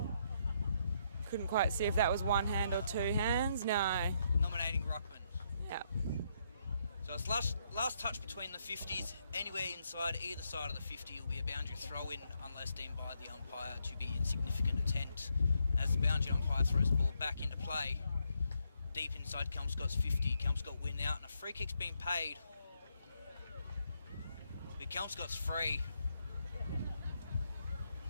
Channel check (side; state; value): both; inverted; correlation -0.76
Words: Couldn't quite see if that was one hand or 2 hands. No. Nominating Ruckman. Yeah. So it's last touch between the 50s. Anywhere inside either side of the 50 will be a boundary throw-in unless deemed by the umpire to be insignificant attempt. As the boundary umpire throws the ball back into play, deep inside Kelmscott's 50, Kelmscott win out and a free kick's been paid. But Kelmscott's free.